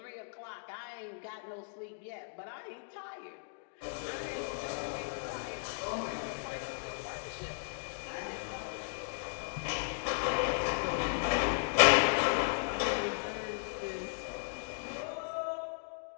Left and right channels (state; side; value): silent; right; digital silence